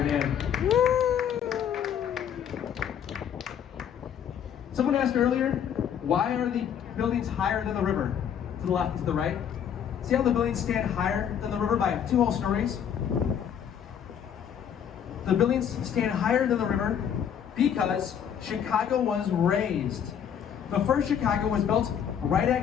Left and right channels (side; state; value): right; quieter; 8.7 dB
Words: name. Someone asked earlier, why are the buildings higher than the river? To the left and to the right. See how the buildings stand higher than the river by 2 whole stories? The buildings stand higher than the river because Chicago was raised. The first Chicago was built right